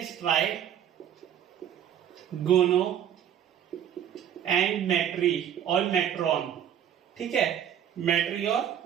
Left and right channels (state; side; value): quieter; left; 9.7 dB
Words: ट्राई, गोनो एंड मेट्री और मेट्रॉन। ठीक है, मेट्री